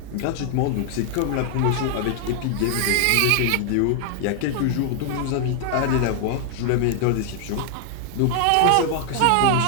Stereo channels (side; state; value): both; different; correlation 0.00